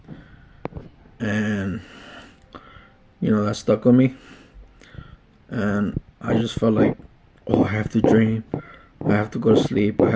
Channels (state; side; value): identical; both; correlation 1.00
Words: and that stuck with me. And I just felt like, oh, I have to dream. I have to go to sleep. I